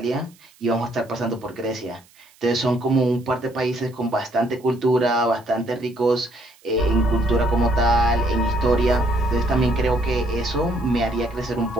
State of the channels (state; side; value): noise; right; hiss, 29 dB below the sound